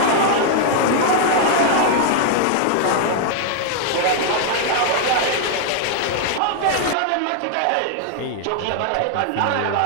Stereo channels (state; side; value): different; both; correlation 0.00